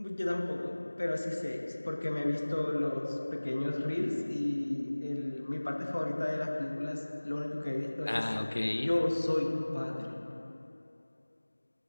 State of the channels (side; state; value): both; inverted; correlation -1.00